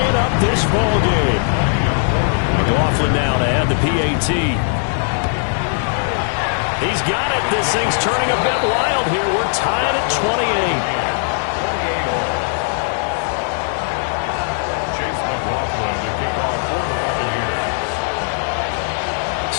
up this ball game. McLaughlin now to add the PAT. He's got it. This thing's turning a bit wild here. We're tied at 28.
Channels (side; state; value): right; silent; 66 dB below the other